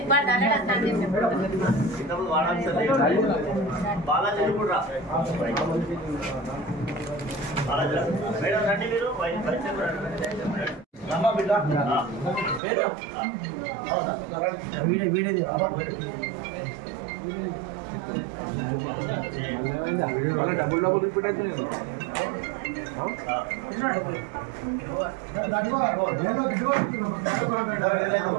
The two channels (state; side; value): drops out; left; at 12.6 s